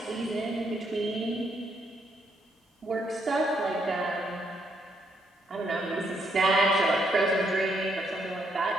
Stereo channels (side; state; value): both; normal; correlation 0.75